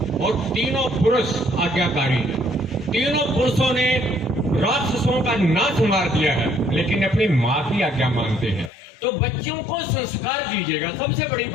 और तीनों पुरुष आज्ञाकारी हैं। तीनों पुरुषों ने राक्षसों का नाश मार दिया है, लेकिन अपनी माँ की आज्ञा मानते हैं। तो बच्चों को संस्कार दीजिएगा, सबसे बड़ी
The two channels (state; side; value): drops out; right; at 8.7 s